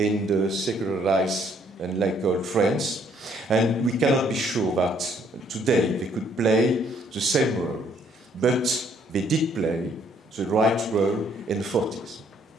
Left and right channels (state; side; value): normal; both; correlation 0.66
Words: the secularized and laical France, and we cannot be sure that today they could play the same role, but they did play the right role in the 40s.